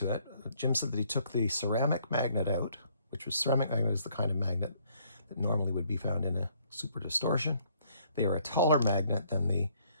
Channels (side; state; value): both; inverted; correlation -0.66